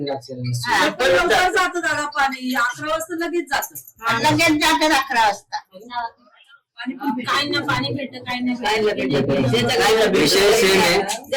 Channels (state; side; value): identical; both; correlation 1.00